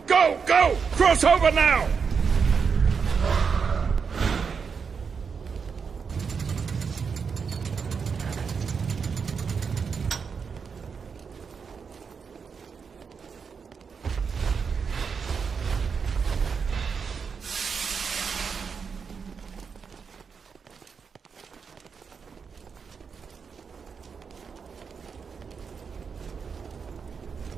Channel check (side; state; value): left; quieter; 5.9 dB